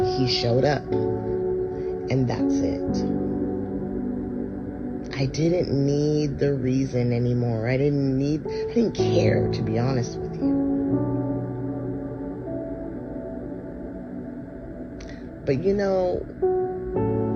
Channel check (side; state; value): both; identical; correlation 1.00